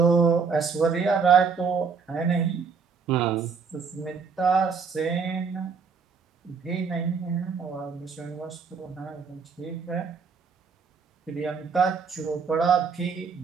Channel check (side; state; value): left; quieter; 5.6 dB